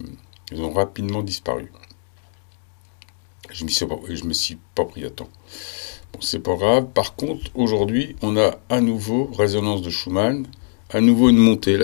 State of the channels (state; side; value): silent; right; 56 dB below the other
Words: ont rapidement disparu. Je me suis pas pris à temps. Bon, c'est pas grave. Par contre, aujourd'hui, on a à nouveau résonance de Schumann, à nouveau une montée.